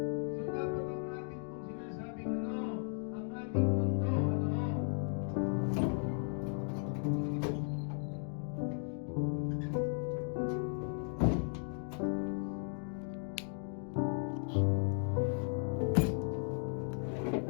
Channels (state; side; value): silent; right; 54 dB below the other